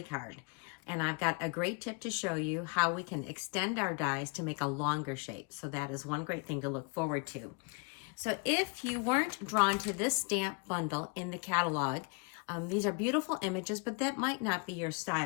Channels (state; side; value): quieter; right; 33.2 dB